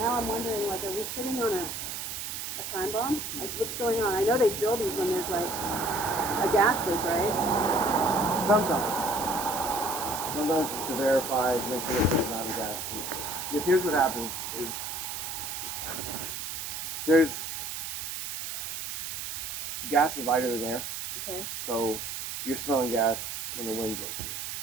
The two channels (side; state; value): right; noise; hiss, 5 dB below the sound